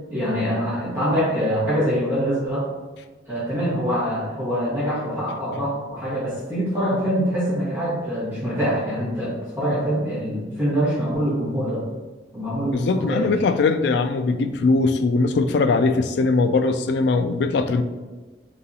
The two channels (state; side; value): normal; both; correlation 0.47